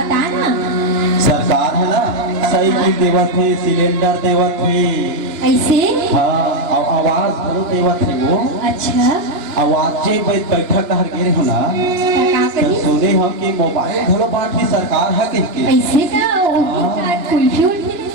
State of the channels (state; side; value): late; left; 2.9 ms